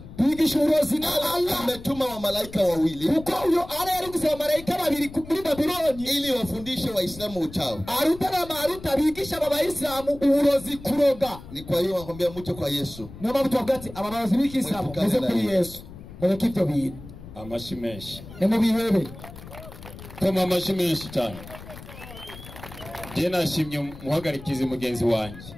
bigisha uburozi na Allah ametuma wa malaika wawili, kuko uyo ala yari gusaba malaika babiri muri Babyloni ili wafundishe Waislamu uchawi. Aruta na Maruta bigisha aba Waislamu uburozi kuroga. Ni kwa hiyo wakwambia muje kwa Yesu. Niyo mpamvu tubagati aba barozi b'ikisilamu muze kuri Yesu mureke ibyo bintu. Amashimeshi nimubihebe koma amashimeshi cyane. Je nashimye muhagarikize mugenzi wanje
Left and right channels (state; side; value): noise; left; rumble, 15 dB below the sound